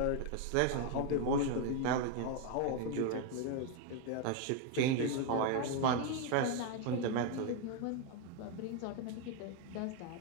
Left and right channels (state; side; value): different; both; correlation 0.01